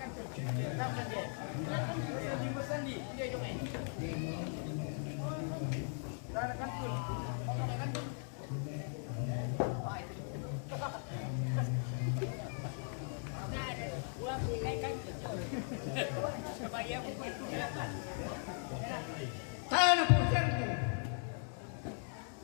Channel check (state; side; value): silent; right; 52 dB below the other